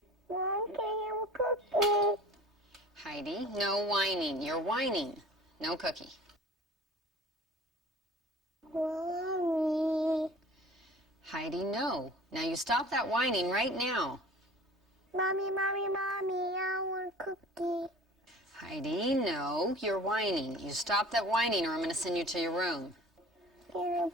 Mom, can I have a cookie? Heidi, no whining. You're whining. No cookie. Mommy. Heidi, no. Now you stop that whining right now. Mommy, I want a cookie. Heidi, no. You're whining. You stop that whining or I'm going to send you to your room. Can I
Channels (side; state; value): both; normal; correlation 0.44